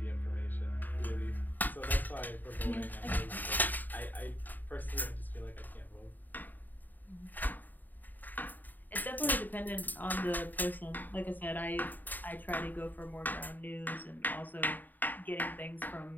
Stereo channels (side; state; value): right; late; 0.087 ms